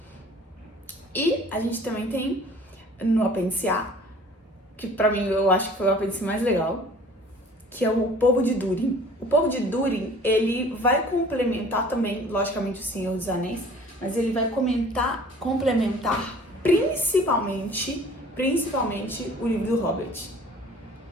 E a gente também tem no apêndice A, que pra mim eu acho que foi o apêndice mais legal, que é o povo de Durin. O povo de Durin, ele vai complementar também, logicamente, o Senhor dos Anéis, mas ele vai complementar principalmente o livro do Hobbit.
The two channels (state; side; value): normal; both; correlation 0.49